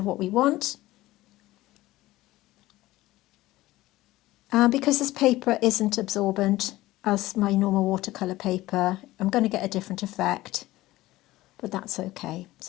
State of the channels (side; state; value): right; quieter; 17.3 dB